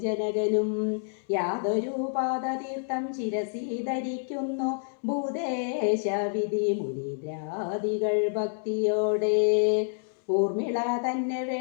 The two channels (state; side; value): silent; right; 59 dB below the other